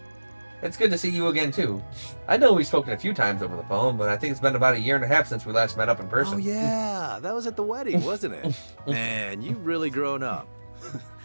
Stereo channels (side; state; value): both; inverted; correlation -1.00